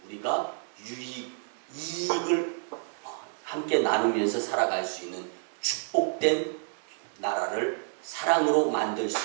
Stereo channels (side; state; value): left; silent; digital silence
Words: 우리가 이익을 함께 나누면서 살아갈 수 있는 축복된 나라를 사랑으로 만들